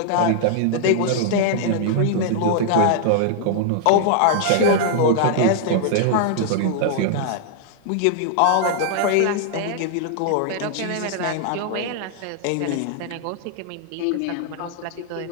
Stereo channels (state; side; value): different; both; correlation -0.01